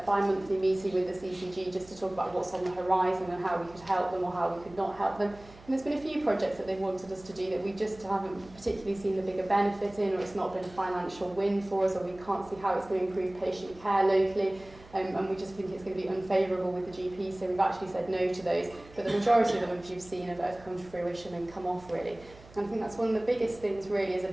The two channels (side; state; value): right; noise; hum, 22 dB below the sound